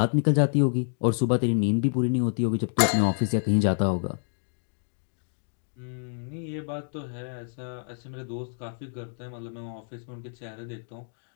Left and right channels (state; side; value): silent; right; digital silence